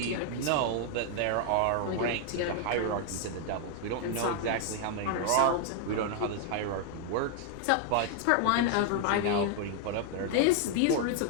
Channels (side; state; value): both; different; correlation 0.00